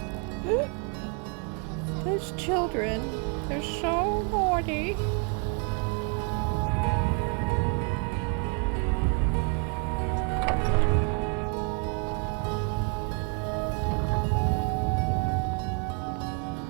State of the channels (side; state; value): left; quieter; 38.0 dB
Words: you. Those children, they're so naughty.